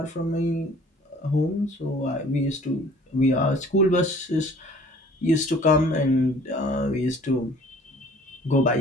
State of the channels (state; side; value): normal; both; correlation 0.52